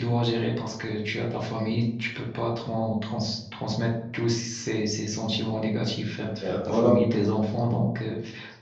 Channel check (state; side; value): identical; both; correlation 1.00